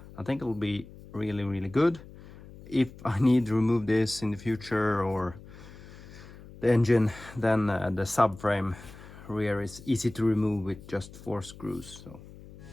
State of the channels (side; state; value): left; noise; hum, 18 dB below the sound